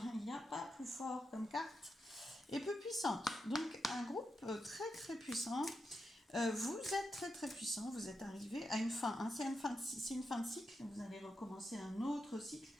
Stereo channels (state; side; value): normal; both; correlation 0.86